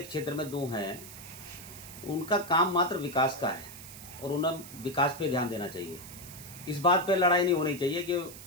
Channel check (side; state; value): right; noise; hiss, 15 dB below the sound